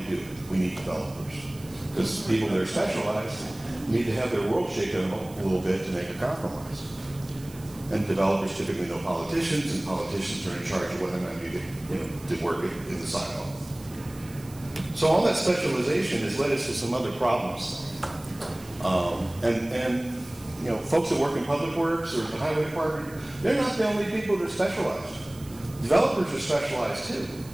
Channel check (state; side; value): noise; right; hiss, 21 dB below the sound